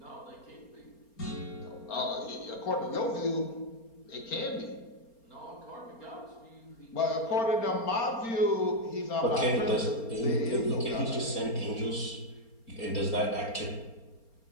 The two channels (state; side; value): late; right; 4.3 ms